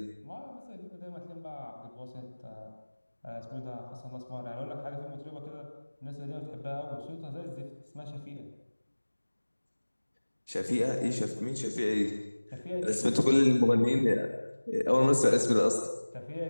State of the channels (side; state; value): both; inverted; correlation -1.00